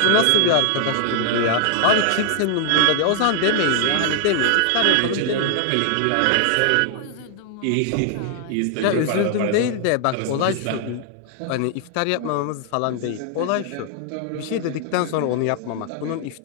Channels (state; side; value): different; both; correlation 0.00